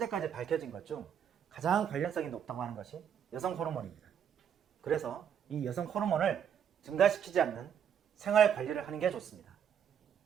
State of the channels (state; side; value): quieter; left; 8.4 dB